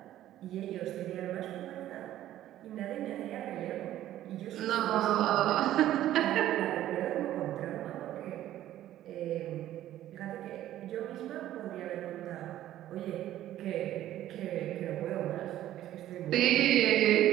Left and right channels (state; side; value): quieter; left; 13.1 dB